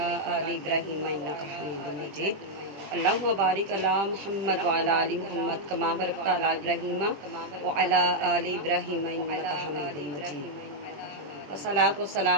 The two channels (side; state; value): left; late; 20 ms